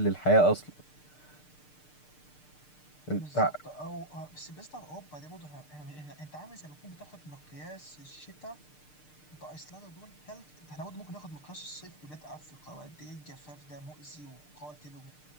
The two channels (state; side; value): late; right; 6.6 ms